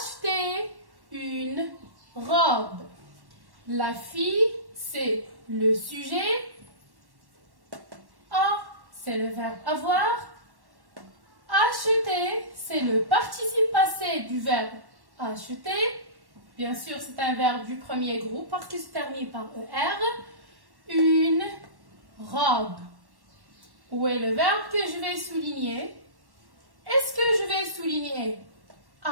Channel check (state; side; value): late; left; 1.1 ms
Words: une robe. La fille, c'est le sujet. A, c'est le verbe avoir. Acheter, c'est le participe passé du verbe acheter. Bien sûr, c'est un verbe du premier groupe parce qu'il se termine par ER. Une robe. Où est le verbe que je vais souligner? Est-ce que je vais souligner